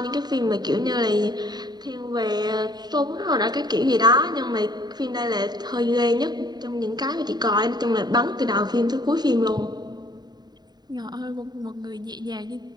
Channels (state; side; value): late; left; 0.20 ms